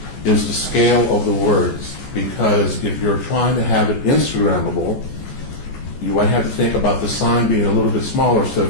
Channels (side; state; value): right; late; 14 ms